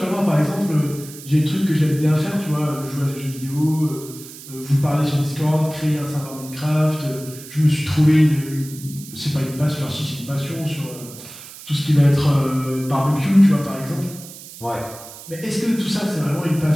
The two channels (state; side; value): noise; right; hiss, 16 dB below the sound